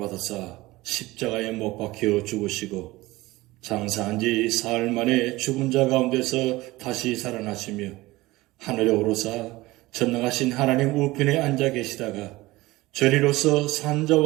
십자가에 못 박혀 죽으시고 장사한 지 사흘 만에 죽은 자 가운데서 다시 살아나시며 하늘에 오르사 전능하신 하나님 우편에 앉아 계시다가 저리로서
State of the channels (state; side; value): quieter; left; 19.6 dB